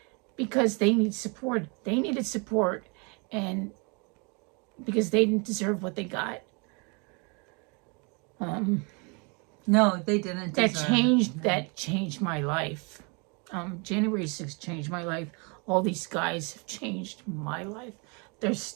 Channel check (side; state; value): left; quieter; 32.7 dB